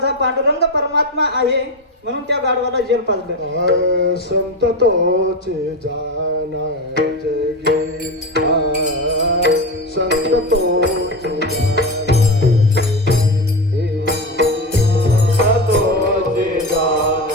पांडुरंग परमात्मा आहे म्हणून त्या गाढवाला जल पाजलं. संत तोचे जानाचे गीत, संत तोचे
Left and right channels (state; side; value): normal; both; correlation 0.20